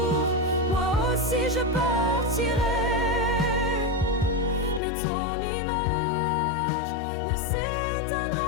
moi aussi je partirai, mais ton image ne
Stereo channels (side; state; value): right; drops out; at 4.8 s